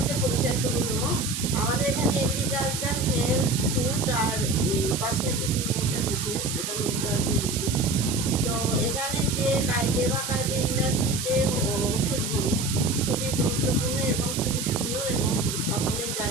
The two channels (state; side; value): noise; right; hiss, 4 dB below the sound